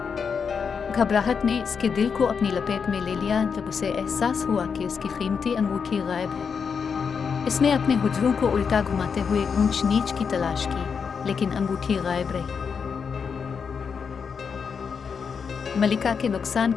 घबराहट ने इसके दिल को अपनी लपेट में ले लिया जब उसे एहसास हुआ कि उसकी कीमती अंगूठी गायब है। इसने अपने हुजरों को उल्टा घुमाते हुए ऊंच नीच की तलाश की, लेकिन अंगूठी गायब रही। मलिका के नुकसान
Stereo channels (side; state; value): right; quieter; 6.2 dB